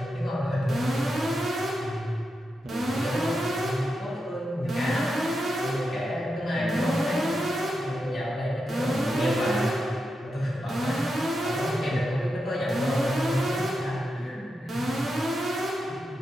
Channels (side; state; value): both; normal; correlation 0.87